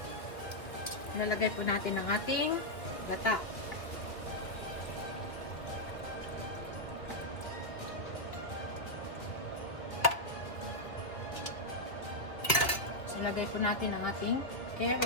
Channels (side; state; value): right; late; 2.2 ms